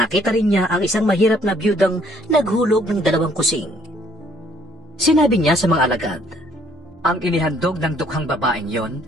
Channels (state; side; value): normal; both; correlation 0.63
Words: rin niya ang isang mahirap na biyudang naghulog ng 2 kusing. Sinabi niya sa mga alagad, "Ang inihandog ng dukhang babaeng yon